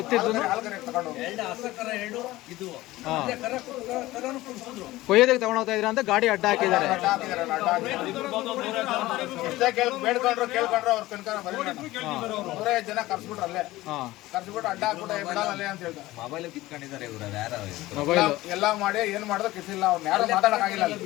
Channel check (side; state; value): right; quieter; 17.7 dB